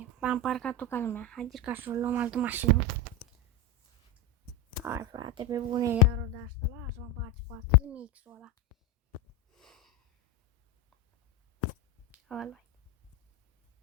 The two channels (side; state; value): both; normal; correlation 0.14